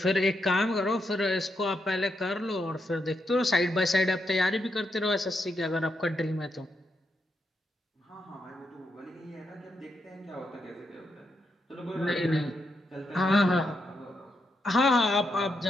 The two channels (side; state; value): both; normal; correlation 0.82